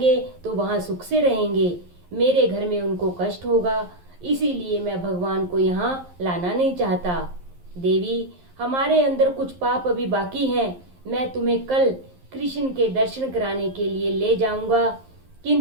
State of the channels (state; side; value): late; left; 11 ms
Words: तो वहां सुख से रहेंगे, मेरे घर में उनको कष्ट होगा, इसीलिए मैं भगवान को यहाँ लाना नहीं चाहता। देवी, हमारे अंदर कुछ पाप अभी बाकी हैं, मैं तुम्हें कल कृष्ण के दर्शन कराने के लिए ले जाऊंगा,